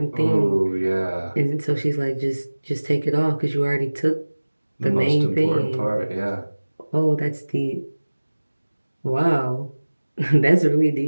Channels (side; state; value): both; inverted; correlation -1.00